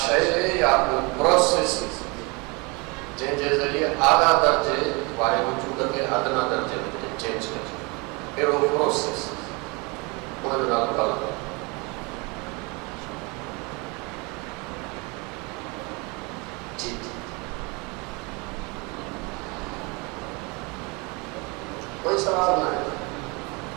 یا پروسیس جن کے ذریعے اعلیٰ درجے والے وجود کے ادنا درجے میں چینج کر اہڑو پروسیس ان جو نالو کال جی کوئی سوال نہ ہے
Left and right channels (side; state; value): left; quieter; 28.5 dB